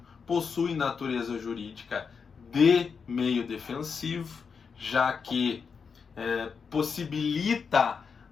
possui natureza jurídica de meio defensivo, já que possibilita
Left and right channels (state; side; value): quieter; right; 5.8 dB